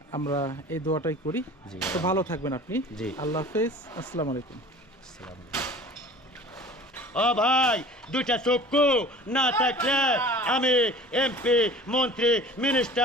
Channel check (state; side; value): normal; both; correlation 0.43